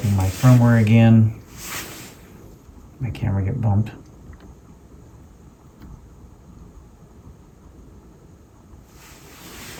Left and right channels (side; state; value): both; identical; correlation 1.00